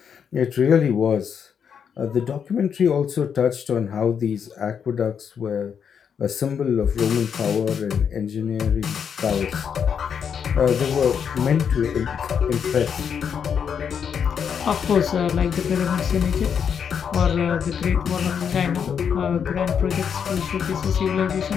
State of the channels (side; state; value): right; quieter; 7.4 dB